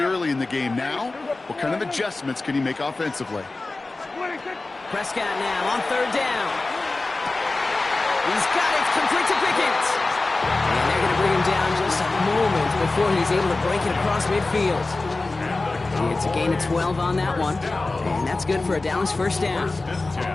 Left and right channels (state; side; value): quieter; right; 3.3 dB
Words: early in the game. Now, what kind of adjustments can he make offensively? Prescott now on 3rd down. He's got it, complete to Pickens. And they're going to bring him down just a moment before he's able to break it across midfield. It's a gain of 12 on that one, and that's good for a Dallas 1st down.